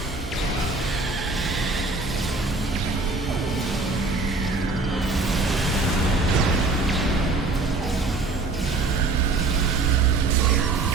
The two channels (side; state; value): left; quieter; 3.6 dB